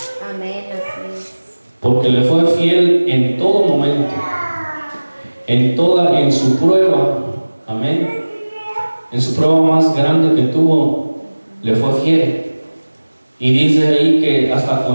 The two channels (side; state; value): both; inverted; correlation -1.00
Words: Amén. Así es. Porque le fue fiel en todo momento, en su prueba. Amén. En su prueba más grande que tuvo, le fue fiel. Y dice ahí que hasta